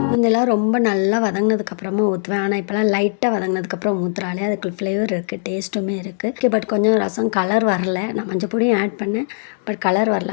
முன்னெல்லாம் ரொம்ப நல்லா வதங்கினதுக்கப்புறமா ஊற்றுவேன். ஆனால் இப்போலாம் லைட்டாக வதங்கினதுக்கப்புறம் ஊற்றுறாலே அதுக்கு ஃப்ளேவர் இருக்குது, டேஸ்ட்டுமே இருக்குது. பட் கொஞ்சம் ரசம் கலர் வரல. நான் மஞ்சள் பொடியும் ஆட் பண்ணேன், பட் கலர்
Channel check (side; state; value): right; silent; digital silence